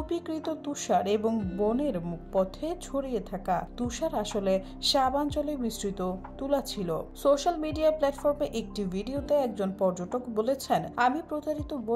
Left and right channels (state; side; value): identical; both; correlation 1.00